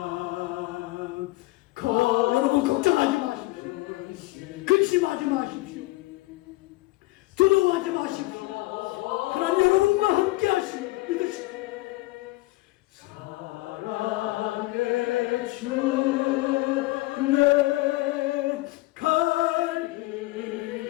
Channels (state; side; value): quieter; right; 20.4 dB